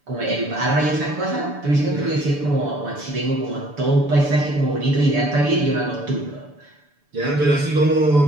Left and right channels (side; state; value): left; late; 6.9 ms